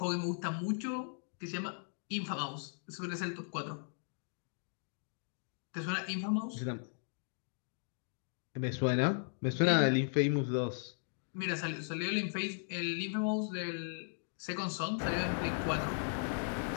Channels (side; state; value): right; silent; digital silence